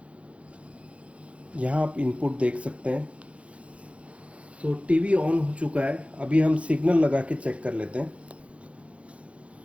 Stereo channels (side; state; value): left; late; 0.062 ms